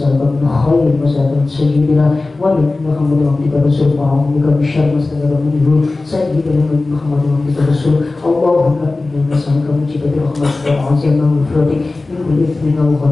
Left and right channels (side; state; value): right; quieter; 3.3 dB